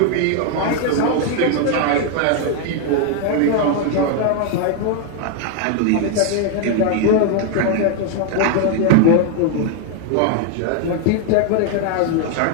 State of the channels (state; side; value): different; both; correlation 0.00